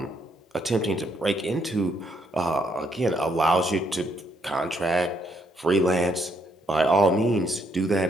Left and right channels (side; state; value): both; normal; correlation 0.73